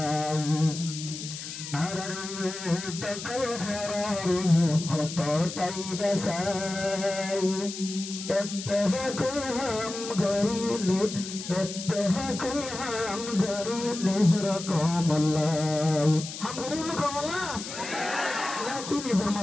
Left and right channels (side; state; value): left; noise; hiss, 9 dB below the sound